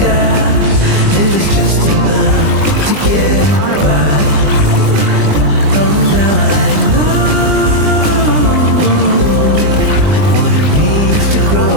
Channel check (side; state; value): left; late; 20 ms